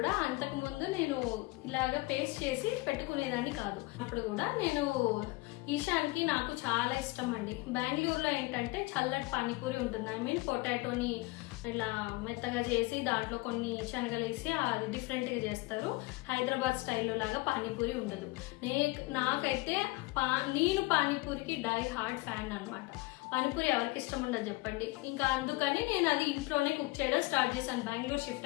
అంతకు ముందు నేను ఇలాగ పేస్ట్ చేసి పెట్టుకునేదాన్ని కాదు. అప్పుడు కూడా నేను ఈశాన్కి నాకు చాలా ఇష్టం అండి. బెంగళూరులో ఏంటంటే చల్లటి పానీపూరి ఉంటుంది. ఐ మీన్ పొటాటోని ఇలా మెత్తగా చేసి దాంట్లో కొన్ని శనగలు వేసి అది డిఫరెంట్ గా చేస్తారు. హైదరాబాద్ స్టైల్లో లాగా పానీపూరి ఉండదు. నాకైతే నేను పానీపూరికి డై హార్డ్ ఫ్యాన్ అనమాట. పానీపూరి ఎవరికి ఇష్టం ఉండదు చెప్పండి. ఇంకా అందుకని నేను అది ఇంట్లోనే కుక్ చేయడం స్టార్ట్ చేశాను బెంగళూరు షిఫ్ట్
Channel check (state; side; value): quieter; right; 22.6 dB